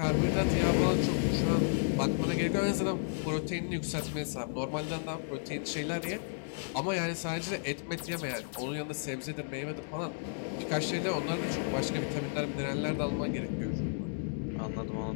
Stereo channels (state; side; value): silent; right; digital silence